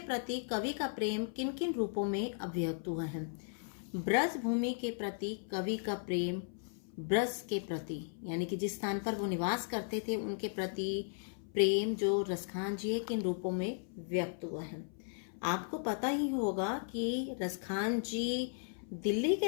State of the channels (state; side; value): silent; right; 54 dB below the other